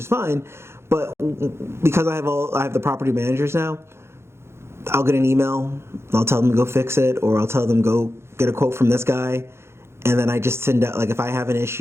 fine. But because I have the property managers now, I'll get an email, I'll tell them to go fix it, or I'll tell them go get a quote from this guy, and then I just send out, like, if I have an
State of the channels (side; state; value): left; late; 0.12 ms